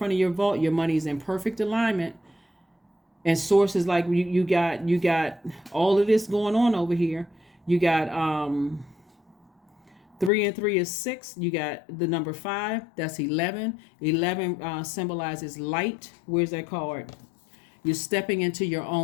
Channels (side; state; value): right; drops out; at 10.3 s